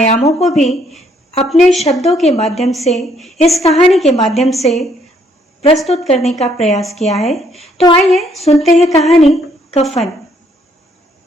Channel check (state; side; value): normal; both; correlation 0.68